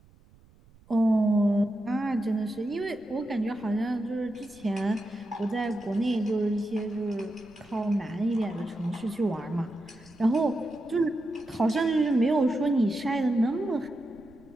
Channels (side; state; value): right; noise; rumble, 27 dB below the sound